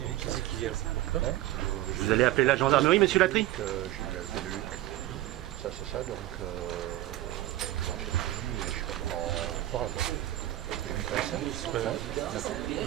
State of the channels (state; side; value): quieter; left; 15.1 dB